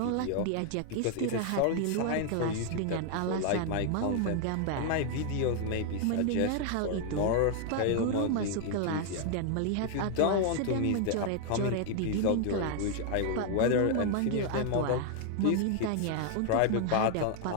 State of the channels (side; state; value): both; different; correlation 0.00